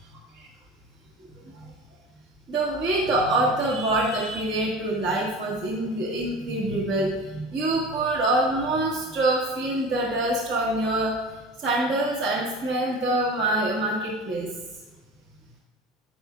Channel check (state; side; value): normal; both; correlation 0.35